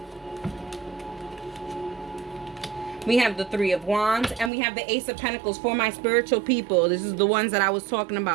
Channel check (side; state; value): left; drops out; at 4.5 s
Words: We have the Three of Wands, and we have the Ace of Pentacles for my spiritual people. This is the ones that I was talking